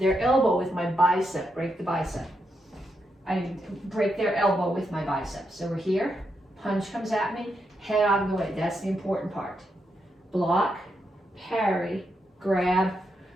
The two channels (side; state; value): both; normal; correlation 0.82